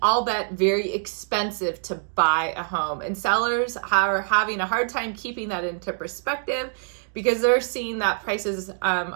albeit very expensive to buy a home. And sellers are having a hard time keeping that into perspective, because they're seeing that prices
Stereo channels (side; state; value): left; silent; digital silence